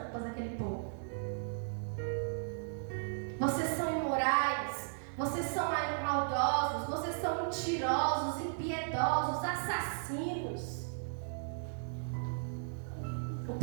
daquele povo. Vocês são imorais, vocês são maldosos, vocês são mentirosos, impiedosos, assassinos. O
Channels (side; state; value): left; silent; digital silence